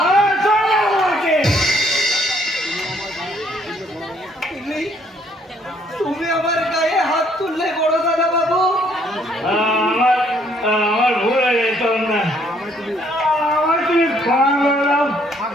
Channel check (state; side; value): normal; both; correlation 0.66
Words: তুমি আমার গায়ে হাত তুললে বড় দাদা বাবু। আমার ভুল হয়ে যেত না, আমার তুমি ক্ষমা করে দাও।